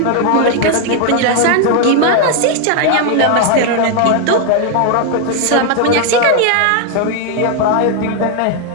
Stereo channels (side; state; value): both; different; correlation 0.00